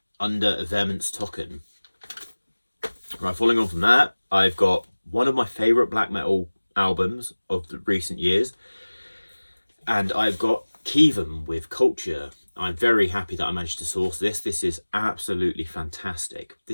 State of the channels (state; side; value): inverted; both; correlation -1.00